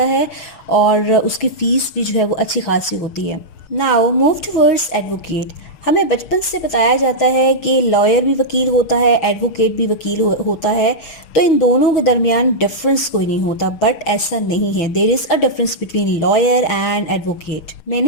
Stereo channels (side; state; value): right; late; 6.4 ms